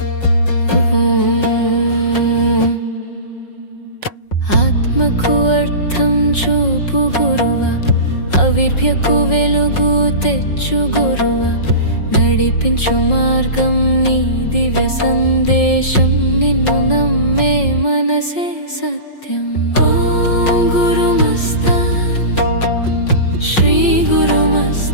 ఆత్మకు అర్థం చూపు గురువ, అవిర్భ్యకు వెలుగు తెచ్చు గురువ, నడిపించు మార్గం నీ దివ్య సందేశం, నిన్ను నమ్మే మనసే సత్యం। ఓం గురుమస్తాన్ శ్రీ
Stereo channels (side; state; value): right; late; 5.5 ms